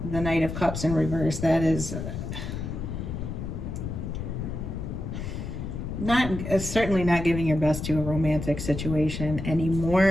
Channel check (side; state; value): left; noise; rumble, 5 dB below the sound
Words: the Knight of Cups in reverse. That is certainly not giving your best to a romantic situation